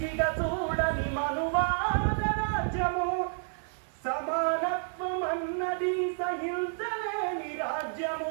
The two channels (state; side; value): silent; left; 58 dB below the other